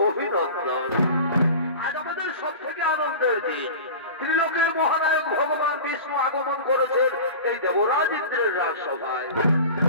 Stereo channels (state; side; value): inverted; both; correlation -0.34